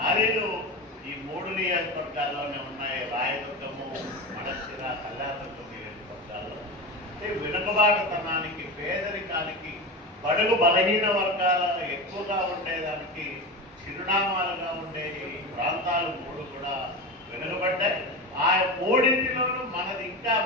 ఈ 3 నియోజకవర్గాల్లోనే ఉన్నాయి. రాయదుర్గము, మడక్సిర, కళ్యాణదుర్గం నియోజకవర్గాల్లో. అంటే వెనుకబాటుతనానికి, పేదరికానికి, బడుగు బలహీన వర్గాల ఎక్కువగా ఉండేదానికి చిరునామాలుగా ఉండే ఈ ప్రాంతాలు 3 కూడా వెనుకబడ్డాయి. ఆ 3ంటిలోనూ మనది ఇంకా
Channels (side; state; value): both; normal; correlation 0.24